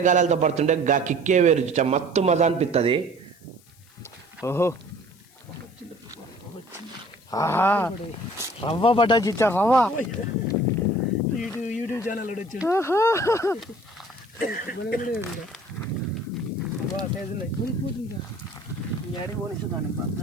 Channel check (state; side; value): noise; left; hiss, 28 dB below the sound